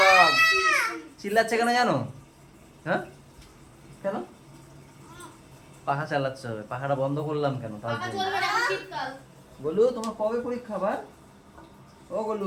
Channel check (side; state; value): both; identical; correlation 1.00